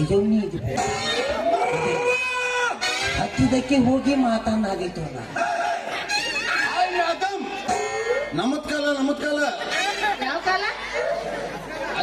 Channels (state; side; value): identical; both; correlation 1.00